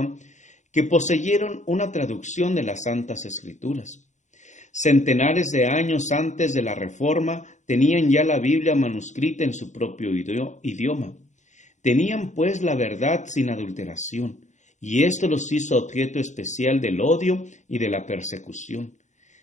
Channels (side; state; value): right; late; 0.35 ms